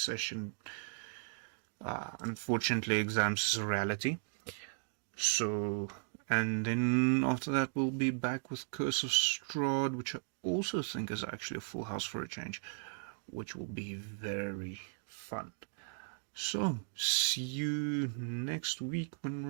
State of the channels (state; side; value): silent; left; digital silence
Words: session. Unfortunately, exams is a reality. So, and then after that we'll be back with Curse of Strahd, which I also think is actually a full house for a change, which will be very fun. So, see you next week when